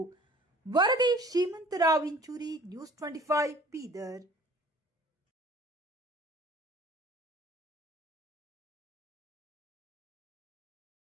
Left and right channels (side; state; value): both; normal; correlation 0.50